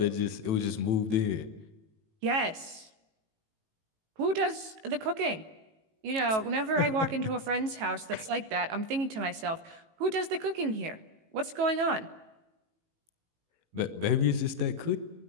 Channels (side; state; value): left; late; 18 ms